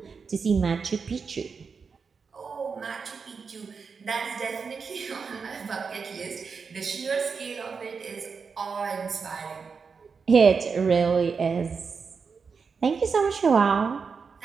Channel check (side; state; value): left; quieter; 5.4 dB